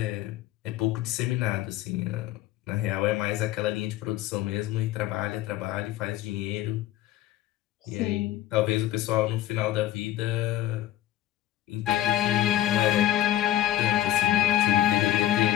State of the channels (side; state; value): right; quieter; 13.7 dB